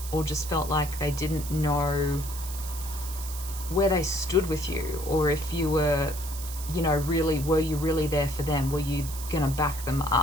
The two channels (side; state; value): right; noise; hiss, 11 dB below the sound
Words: or just felt like they didn't know where they stood with you, or if you were, you know, really, were you really there for them? Were you gonna back them